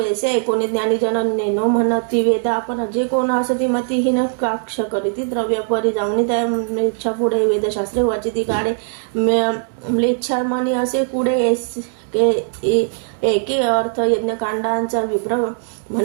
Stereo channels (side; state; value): left; silent; 66 dB below the other